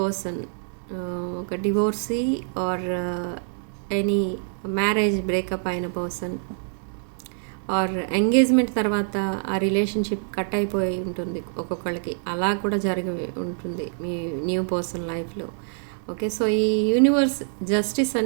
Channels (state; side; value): silent; left; 62 dB below the other